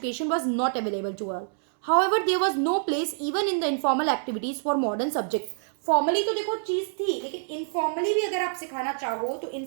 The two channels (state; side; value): silent; left; digital silence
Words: was not available to all. However, there was no place even in the informal activities for modern subjects. Formally तो देखो चीज थी, लेकिन इनफॉर्मली भी अगर आप सिखाना चाहो तो